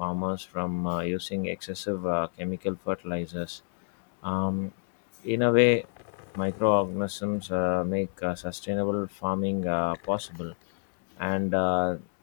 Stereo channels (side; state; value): right; silent; digital silence